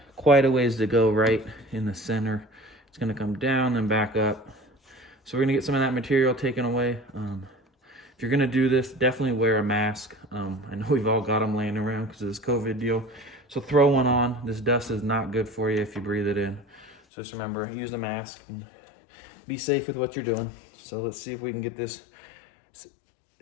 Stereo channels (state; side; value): drops out; right; at 16.9 s